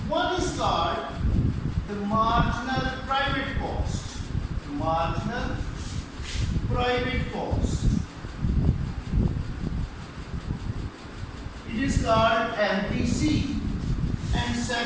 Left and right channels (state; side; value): identical; both; correlation 1.00